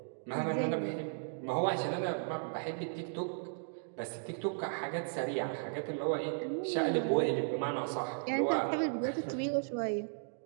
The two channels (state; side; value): silent; left; digital silence